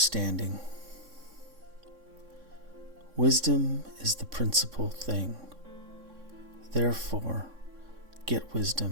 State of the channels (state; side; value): late; left; 3.6 ms